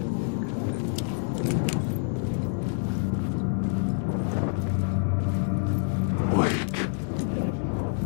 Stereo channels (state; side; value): silent; right; digital silence